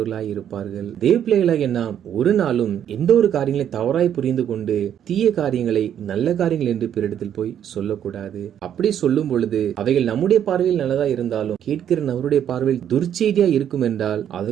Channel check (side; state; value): left; quieter; 9.7 dB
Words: இருப்பார்கள். தேவ பிள்ளைகளாகிய நாம் ஒரு நாளும் எந்த ஒரு காரியங்களை தவறாய் புரிந்து கொண்டு தீய காரியங்களை நல்ல காரியங்கள் என்று பிறரிடத்தில் போய் சொல்லக்கூடாது. அப்படி சொல்லும் பொழுது அவைகள் நம்முடைய பார்வையில் நல்லதா இருந்தாலும் கேட்கிற நபருடைய பார்வையில் துர்ச்செய்தியா இருக்கும் என்றால்